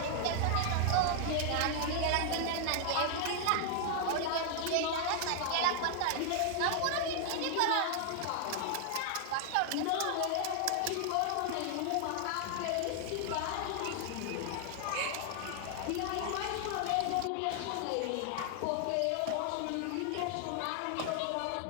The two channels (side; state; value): both; different; correlation 0.00